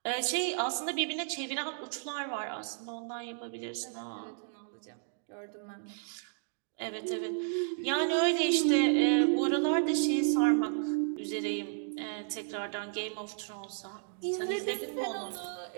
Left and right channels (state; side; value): silent; left; digital silence